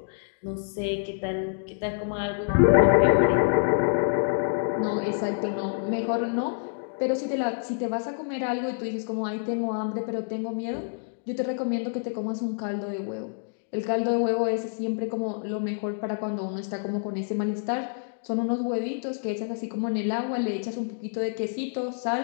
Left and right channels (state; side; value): silent; right; digital silence